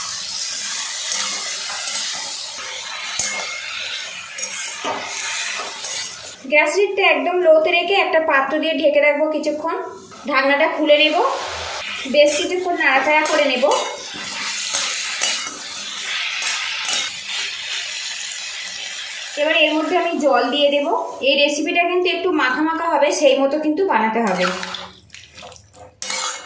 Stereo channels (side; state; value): both; identical; correlation 1.00